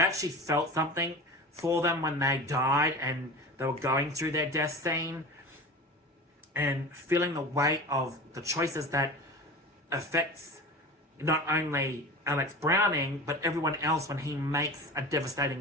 actually felt something for them when they died and they were going through their death scene, and feeling the weight of the choices that affects not only Alex Browning, but everyone else when he makes a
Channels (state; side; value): normal; both; correlation 0.33